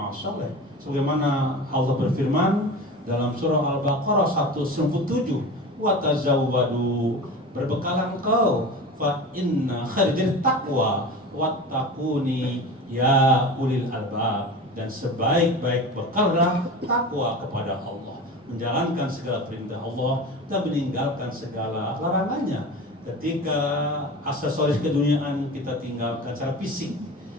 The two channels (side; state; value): both; normal; correlation 0.32